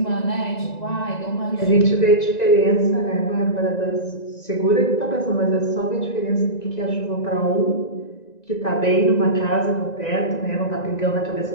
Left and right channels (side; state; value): right; late; 1.9 ms